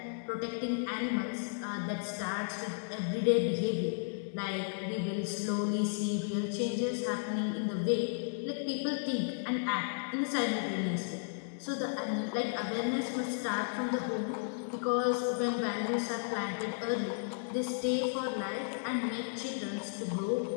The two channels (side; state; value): right; silent; 55 dB below the other